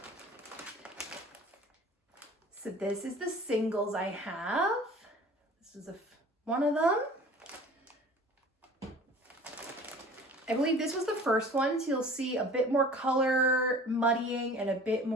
So this is the singles I have. This is one of them. I believe this was the first one, so you'll see a bit more color muddying and a bit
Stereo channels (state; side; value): normal; both; correlation 0.45